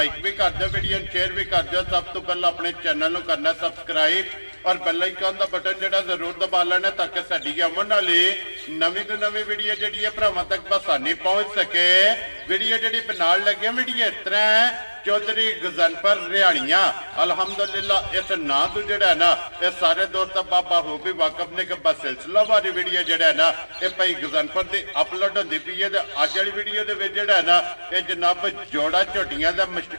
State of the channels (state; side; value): inverted; both; correlation -1.00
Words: भी कर दो, वीडियो शेयर भी कर दो। सब तो पहले अपने चैनल नूं करना सब्सक्राइब और बेल आइकन का बटन जो जरूर दबा लेना ताकि साडी आने वाली नवीं तो नवीं वीडियो जी भरावां तक बसानी पहुँच सके। वीडियो जी नाल लगे वीडियो इस तरह है चौधरी गजनफर रिहाड़ियां अलहमदुलिल्लाह इस ना तो जड़ा है ना ये सारे दोस्त बाबा हो भी वाकफ ने कि बस सिलसिलावारी वीडियो जड़ा है ना ये भाई गजनफर की अपलोड होती पई है। अज वाली वीडियो के जड़ा है ना ये जनाब जोड़ा झोटियां का